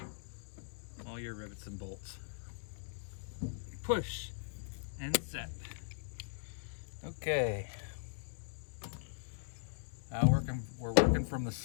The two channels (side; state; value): right; silent; digital silence